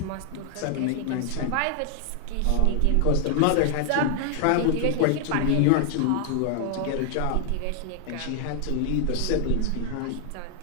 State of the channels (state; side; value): different; both; correlation 0.00